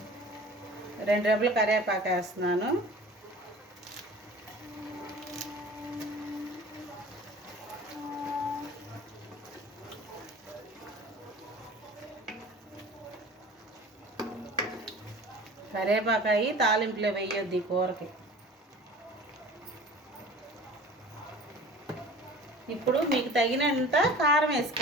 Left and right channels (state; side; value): normal; both; correlation 0.42